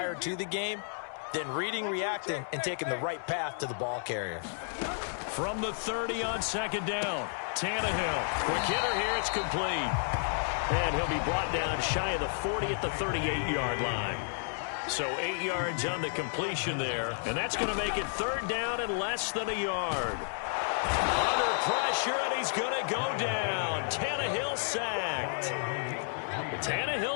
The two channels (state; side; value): silent; right; digital silence